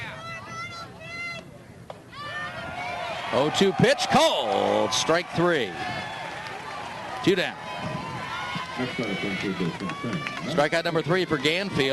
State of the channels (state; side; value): identical; both; correlation 1.00